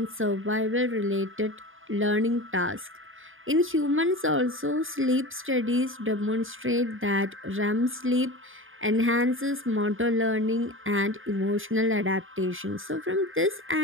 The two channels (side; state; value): left; late; 0.59 ms